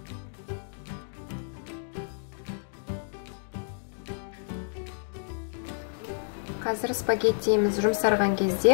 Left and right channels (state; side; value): silent; right; digital silence